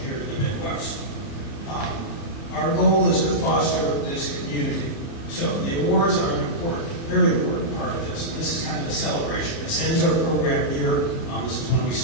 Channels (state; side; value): late; right; 30 ms